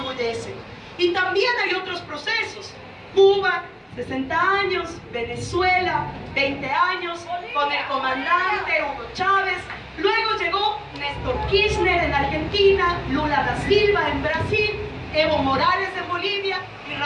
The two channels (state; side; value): identical; both; correlation 1.00